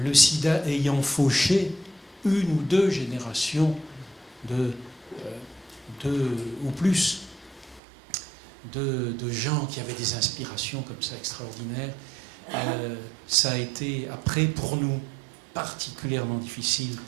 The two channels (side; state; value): left; drops out; at 7.8 s